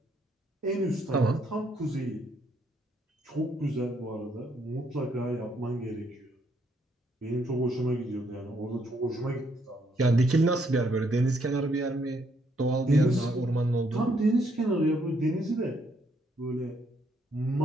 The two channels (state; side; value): normal; both; correlation 0.72